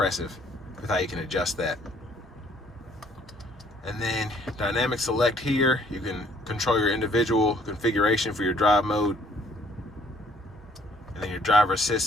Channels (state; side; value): normal; both; correlation 0.61